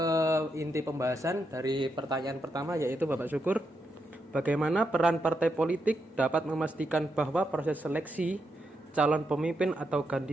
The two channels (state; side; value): normal; both; correlation 0.82